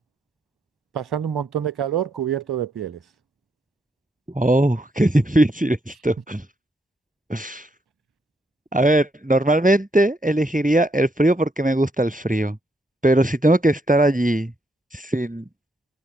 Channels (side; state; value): both; normal; correlation 0.76